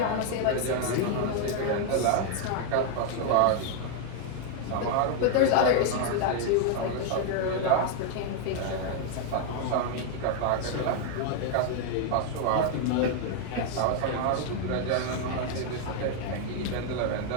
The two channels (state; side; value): different; both; correlation 0.00